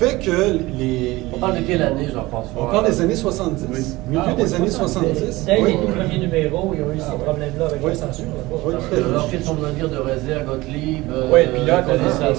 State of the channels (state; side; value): quieter; left; 20.0 dB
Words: que On parle de quelle année, Jean-François? On parle des années 70. Milieu des années 70. Dès Oui. les tout premiers numéros, ils ont eu ces problèmes-là avec la censure. Oui. Alors qu'ils sont de venir de Rézé à Gottlieb, puis là, Colin c'est